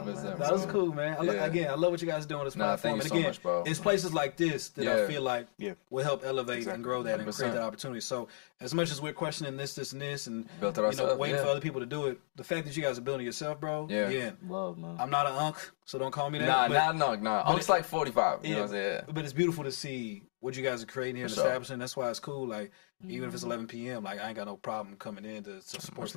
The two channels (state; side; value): silent; right; digital silence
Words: That was bro. cool, man. Again, I love what you guys are doing on this Nah, platform. thank you And so again, much, bro. it's places like this that I feel like Yeah. will help elevate and grow that and 100%. create that opportunity. So as much as we're questioning this, and this, and Built it you know, ourselves, waiting yeah. for other people to do it, the fact that you guys are building yourself, bro. Yeah. Again, Love, man. I'm not an unk, so don't call me that. Nah. Unc's like 45. You know what I'm saying? But it's beautiful to see what you guys are creating here and For sure. establishing. That's why it's cool. Like, even if it's 11 p.m., like, I ain't got no problem coming in to support Much